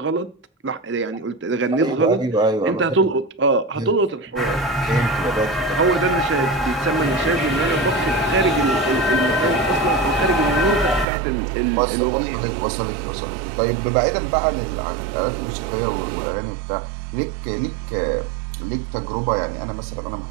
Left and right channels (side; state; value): left; drops out; at 11.1 s